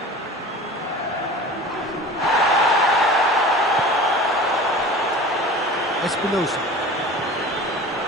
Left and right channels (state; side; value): normal; both; correlation 0.38